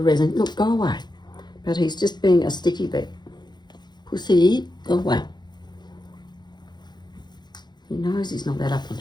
resin. Look, go away. But he's just being a sticky bit. Pussy, go away. He knows he's not that up on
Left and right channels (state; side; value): late; right; 0.21 ms